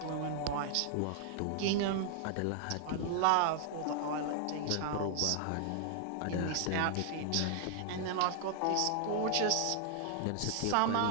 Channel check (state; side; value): different; both; correlation -0.01